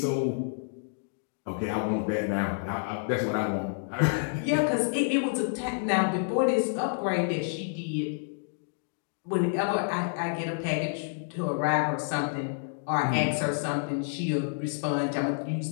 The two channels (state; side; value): silent; right; digital silence